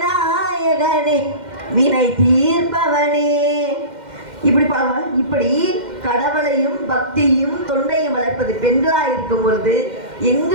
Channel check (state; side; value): late; left; 2.1 ms